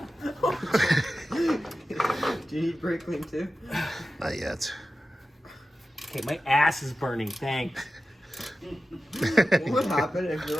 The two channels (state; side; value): normal; both; correlation 0.93